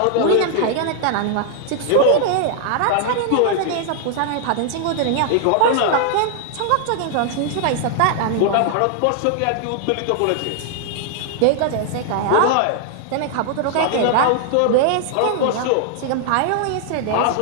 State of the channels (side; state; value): both; different; correlation 0.00